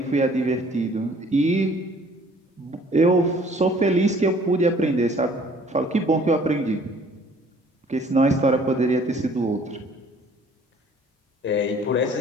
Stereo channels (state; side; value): normal; both; correlation 0.56